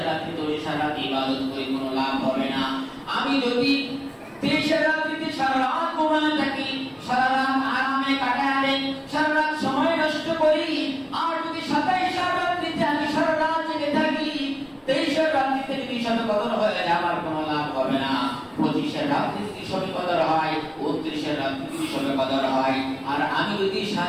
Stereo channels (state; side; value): identical; both; correlation 1.00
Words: রাত্রিতে ওই সারা রাত ইবাদত করে কোনো লাভ হবে না। আমি যদি 23 রাত্রিতে সারা রাত ঘুমায় থাকি, সারা রাত আরামে কাটায় দেই, সারা রাত সময় নষ্ট করি, আর যদি 27 রাত্রিতে আমি সারা রাত জেগে থাকি, 23 রাত্রিতে যদি শবে কদর হয়ে যায়, আমার কোনো লাভ হবে না। 25 রাত্রিতে যদি শবে কদর হয়, 29 রাত্রিতে যদি শবে কদর হয়, আর আমি যদি